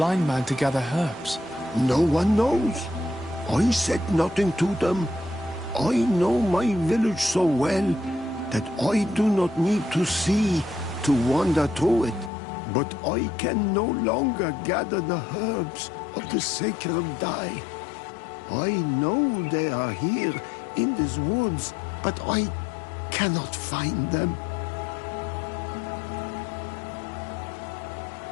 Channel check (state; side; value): drops out; right; at 12.3 s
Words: man to gather herbs? No one knows. I said nothing to them. I know my village so well that I do not need to see to wander through it. But I can no longer gather the herbs of the sacred dye. I know they are here in these woods, but I cannot find them.